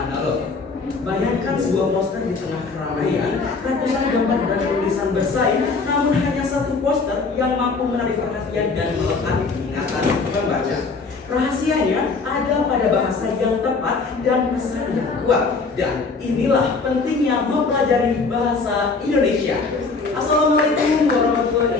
analog. Bayangkan sebuah poster di tengah keramaian, ratusan gambar dan tulisan bersaing, namun hanya satu poster yang mampu menarik perhatian dan melekat di ingatan pembaca. Rahasianya ada pada bahasa yang tepat dan pesan yang kuat. Dan inilah pentingnya mempelajari bahasa Indonesia. Assalamualaikum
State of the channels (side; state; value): right; quieter; 4.3 dB